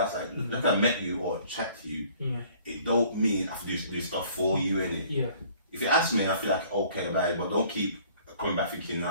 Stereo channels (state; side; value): inverted; both; correlation -0.54